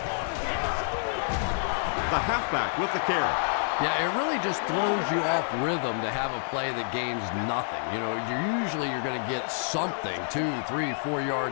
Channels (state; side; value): silent; right; 57 dB below the other